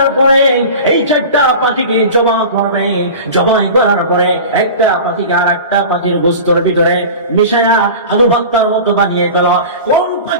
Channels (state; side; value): inverted; both; correlation -0.35